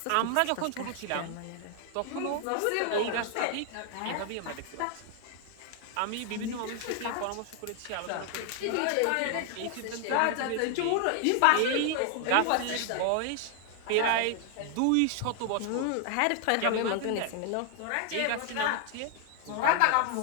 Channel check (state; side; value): different; both; correlation 0.00